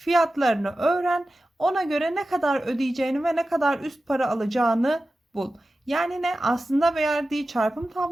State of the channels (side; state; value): both; normal; correlation 0.94